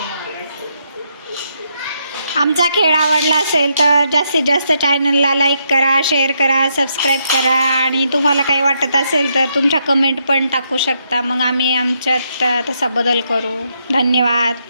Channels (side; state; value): both; inverted; correlation -0.77